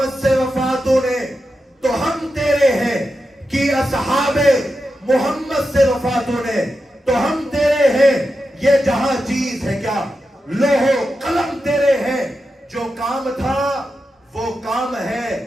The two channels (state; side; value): normal; both; correlation 0.89